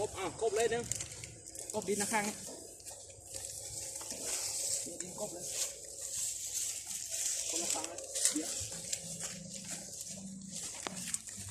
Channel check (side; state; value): both; identical; correlation 1.00